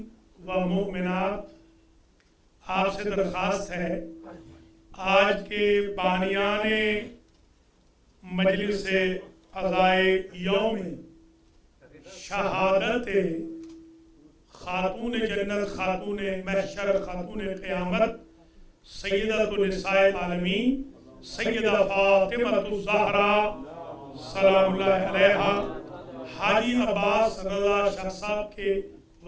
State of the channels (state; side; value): identical; both; correlation 1.00